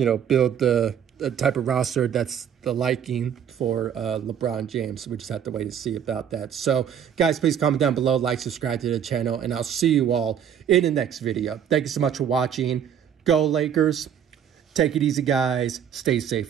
the type of roster that's the liking for LeBron James. We just have to wait to see about that. So, guys, please comment down below, like, subscribe to the channel, and I'll see you all in the next video. Thank you so much for watching. Go Lakers. Take it easy, guys. Stay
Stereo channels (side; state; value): left; quieter; 8.7 dB